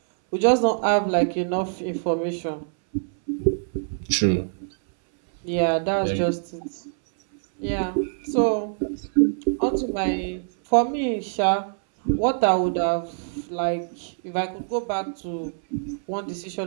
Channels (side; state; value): left; silent; 61 dB below the other